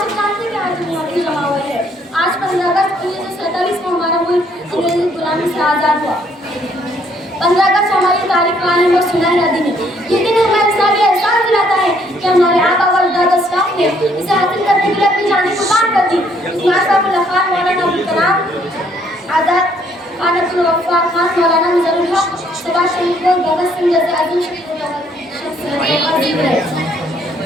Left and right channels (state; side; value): normal; both; correlation 0.66